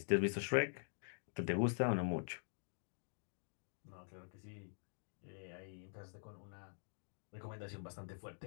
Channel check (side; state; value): right; silent; digital silence